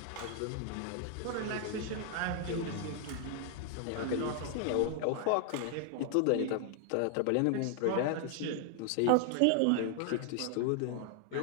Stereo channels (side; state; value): both; different; correlation 0.00